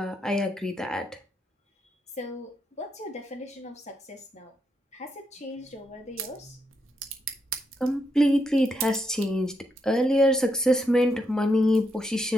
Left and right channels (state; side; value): normal; both; correlation 0.80